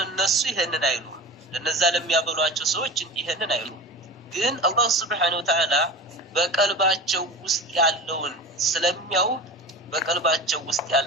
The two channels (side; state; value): both; normal; correlation 0.31